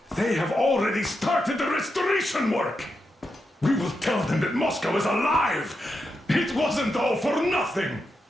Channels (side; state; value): both; normal; correlation 0.86